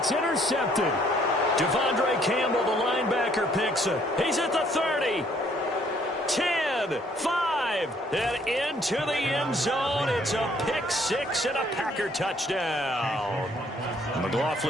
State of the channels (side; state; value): both; normal; correlation 0.64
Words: intercepted. Devondre Campbell, the linebacker, picks it. He's at the 30. 10, 5, and into the end zone. It's a pick 6 and a Packer touchdown.